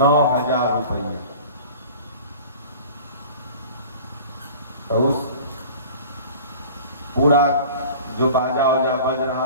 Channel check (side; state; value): both; inverted; correlation -0.42